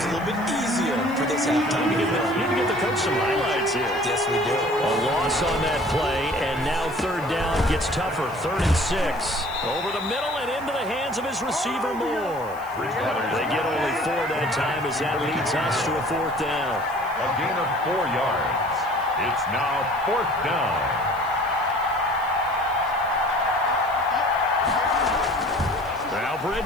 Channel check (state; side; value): noise; left; hiss, 24 dB below the sound